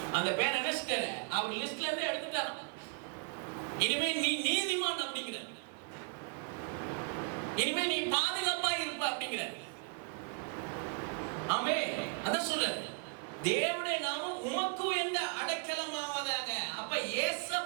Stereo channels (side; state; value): left; quieter; 38.3 dB